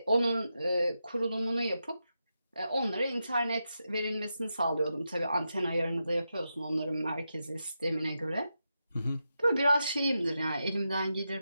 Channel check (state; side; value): inverted; both; correlation -0.87